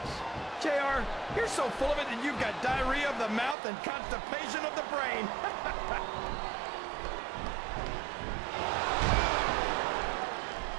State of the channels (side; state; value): left; drops out; at 3.6 s